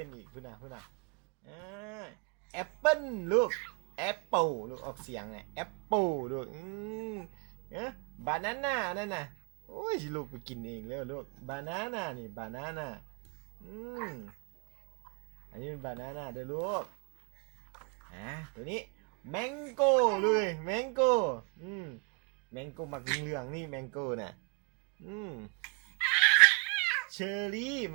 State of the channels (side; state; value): left; quieter; 33.6 dB